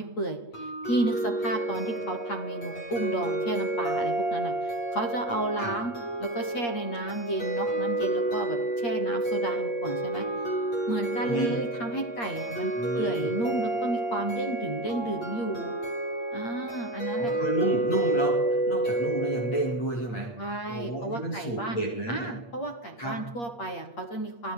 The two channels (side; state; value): right; late; 8.5 ms